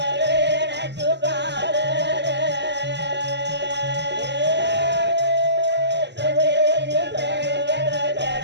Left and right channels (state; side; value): late; left; 0.50 ms